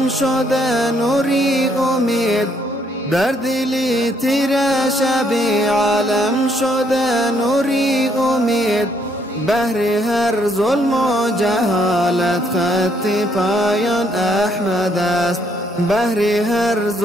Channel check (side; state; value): both; normal; correlation 0.70